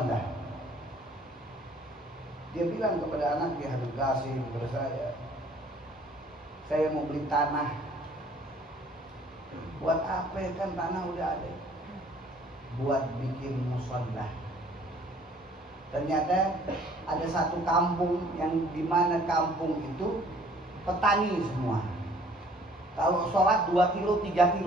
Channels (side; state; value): both; normal; correlation 0.57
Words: Dia bilang kepada anaknya Habib Qasim, kepada saya mau beli tanah. Buat apa kan tanah udah ada? Buat bikin musalla. Ternyata ada satu kampung yang dimana kampung itu petani semua. Kalau sholat 2 kilo, 3